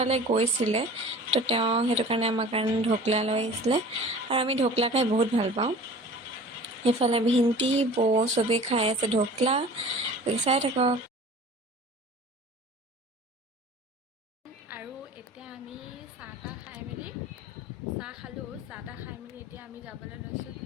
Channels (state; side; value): normal; both; correlation 0.42